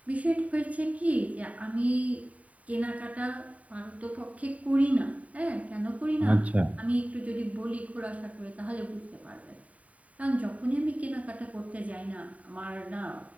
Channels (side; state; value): left; late; 0.068 ms